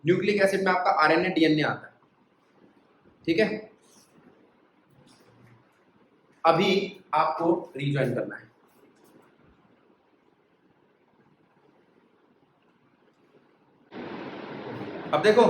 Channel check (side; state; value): both; identical; correlation 1.00